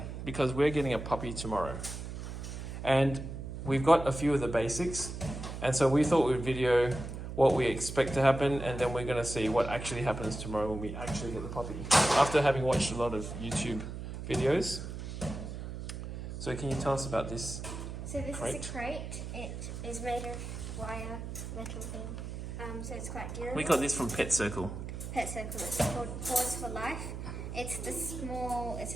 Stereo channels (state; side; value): noise; right; hum, 7 dB below the sound